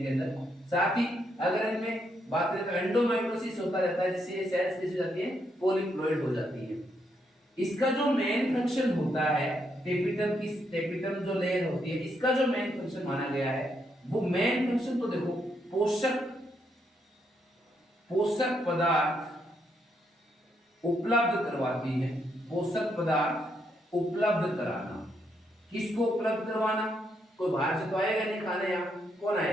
अंदर। साथ ही अगर इनमें बात करें तो एंडोमाइटोसिस होता रहता है, जिससे ये सेल्स कैसी हो जाती हैं? पॉलीप्लॉइड हो जाती है। इसका जो मेन फंक्शन होता है टेपिटम की, टेपिटम जो लेयर होती है इसका जो मेन फंक्शन माना गया है वो मेन फंक्शन तो देखो पोषक पदार्थ उपलब्ध करवाती है, पोषक पदार्थ उपलब्ध कराना। किसको उपलब्ध करवाना? कोई बाहर से तो आएगा नहीं खाने, यहाँ कौन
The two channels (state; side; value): normal; both; correlation 0.77